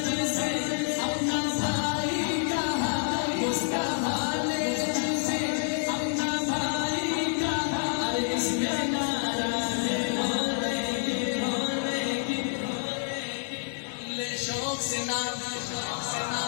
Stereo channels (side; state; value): right; silent; digital silence